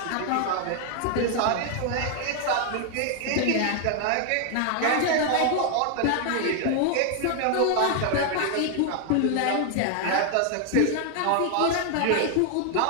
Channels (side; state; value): both; different; correlation 0.00